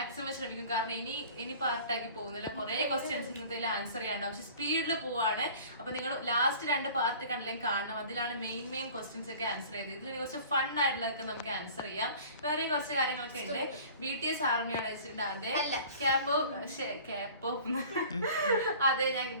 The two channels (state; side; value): inverted; both; correlation -0.45